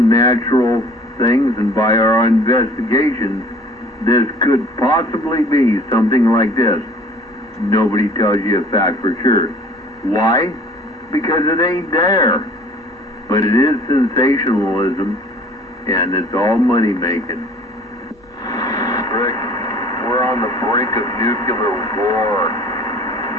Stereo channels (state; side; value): normal; both; correlation 0.50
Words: things and by our investigations, this could possibly be something like this. Nobody tells you a fact for sure. Why? Because it ain't there. But it is sensationalism, and it's all money making. Rick, we're on the brink of nuclear war.